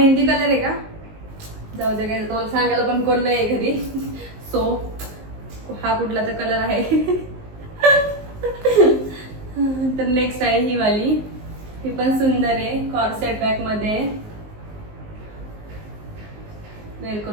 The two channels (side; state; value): left; late; 19 ms